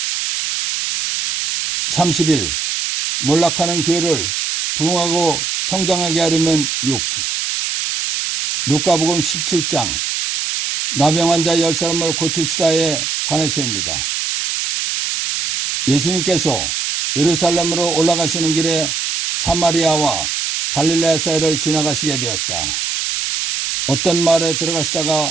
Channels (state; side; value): noise; right; hiss, 2 dB below the sound